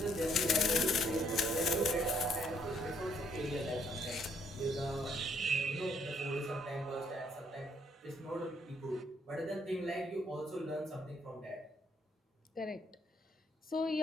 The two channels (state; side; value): normal; both; correlation 0.69